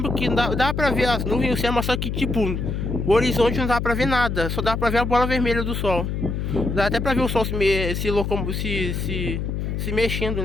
que dava pra ver as nuvens e o céu, mas só que tipo, o horizonte não dava pra ver nada, só dava pra ver a bola vermelha do sol. Dá até pra ver o sol se mexendo,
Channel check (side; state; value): left; noise; hum, 2 dB below the sound